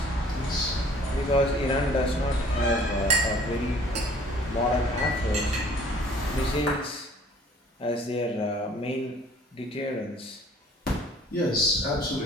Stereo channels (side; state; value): both; normal; correlation 0.53